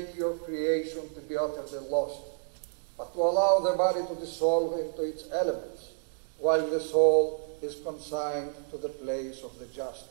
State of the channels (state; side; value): silent; left; digital silence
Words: your creation to be utterly lost, but to allow the body to dissolve into its elements, while the soul is consigned to the place of the just.